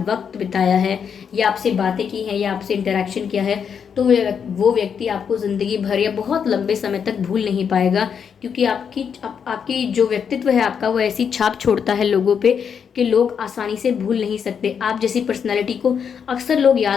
बिताया है या आपसे बातें की हैं या आपसे इंटरेक्शन किया है, तो वो व्यक्ति आपको ज़िंदगी भर या बहुत लंबे समय तक भूल नहीं पाएगा, क्योंकि आपकी जो व्यक्तित्व है आपका, वो ऐसी छाप छोड़ता है लोगों पे कि लोग आसानी से भूल नहीं सकते। आप जैसी पर्सनैलिटी को अक्सर लोग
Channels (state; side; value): quieter; right; 7.1 dB